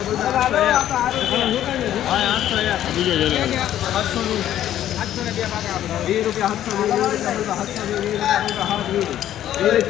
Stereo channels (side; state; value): right; quieter; 11.8 dB